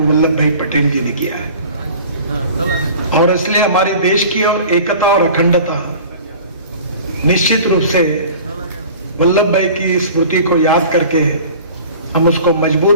भाई पटेल जी ने किया है। और इसलिए हमारे देश की एकता और अखंडता निश्चित रूप से वल्लभ भाई की स्मृति को याद करके हम उसको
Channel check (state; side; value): inverted; both; correlation -0.43